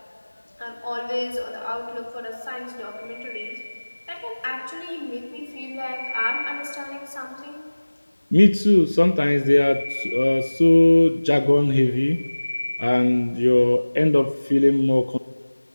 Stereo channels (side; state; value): both; inverted; correlation -1.00